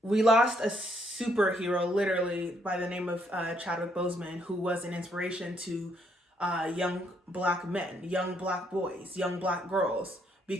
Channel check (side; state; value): both; normal; correlation 0.71